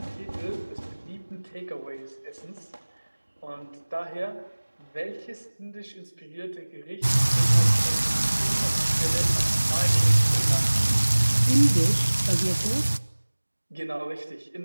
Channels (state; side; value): inverted; both; correlation -1.00